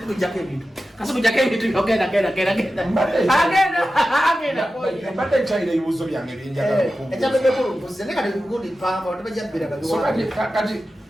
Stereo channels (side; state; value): both; normal; correlation 0.93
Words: kujake bintu. Kaso kujake bintu ogenda. Agenda. Mbate nchaire ibibuzo byange binjaga kukumbuza. Ekyabebe kulumbuza ne kati kugudi pamba otabajabbira kali. So kati